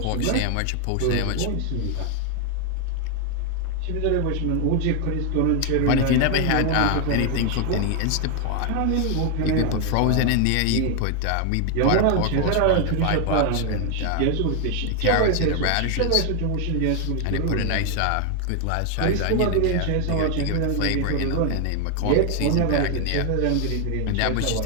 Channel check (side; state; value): both; different; correlation 0.00